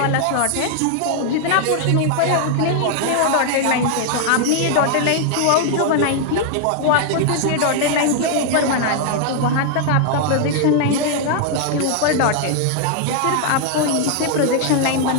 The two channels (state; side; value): different; both; correlation 0.00